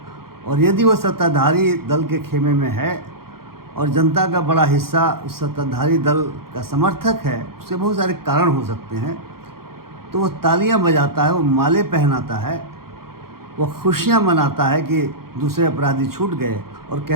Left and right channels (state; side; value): late; left; 0.94 ms